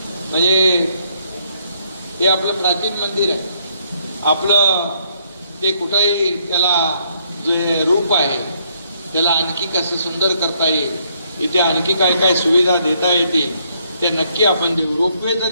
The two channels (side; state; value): both; inverted; correlation -0.70